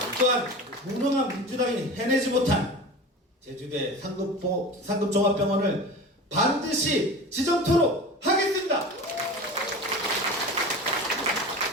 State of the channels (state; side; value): normal; both; correlation 0.33